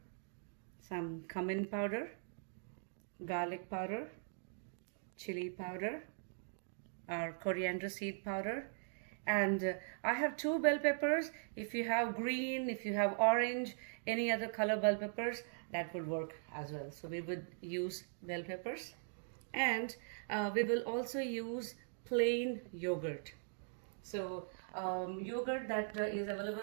some cumin powder, garlic powder, chilli powder, our coriander seed powder, and I have 2 bell peppers. If you have green, if you have orange, any other color bell peppers, that would work as well. So we would use bell peppers, and we will also use plain yogurt. So yogurt that is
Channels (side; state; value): left; silent; digital silence